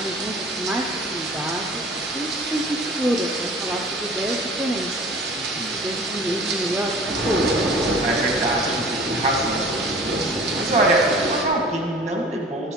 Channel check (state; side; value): normal; both; correlation 0.44